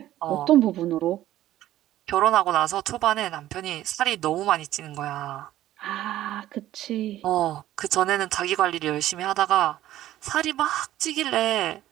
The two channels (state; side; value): quieter; left; 13.8 dB